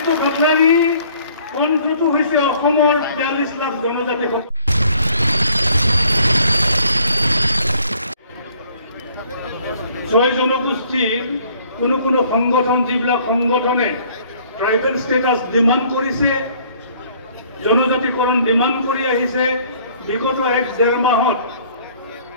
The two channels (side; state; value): both; inverted; correlation -0.58